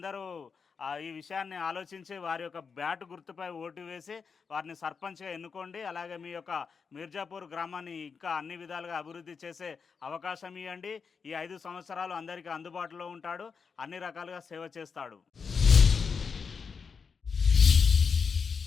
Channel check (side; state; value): right; quieter; 5.6 dB